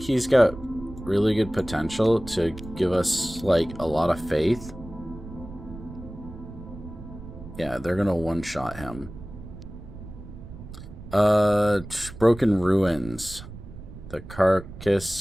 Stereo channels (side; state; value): right; noise; rumble, 14 dB below the sound